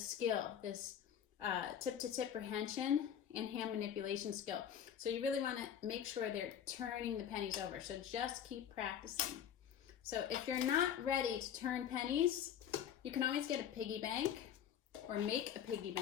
skill, this tip-to-tip prehension and hand manipulation skill. So you really want to make sure they're turning the pennies over. So just keep practicing. So if you're not ready to turn pennies, you can always get a piggy bank or make a piggy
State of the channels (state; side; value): quieter; right; 9.2 dB